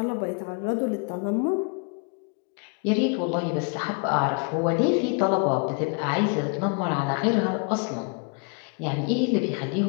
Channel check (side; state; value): right; quieter; 35.9 dB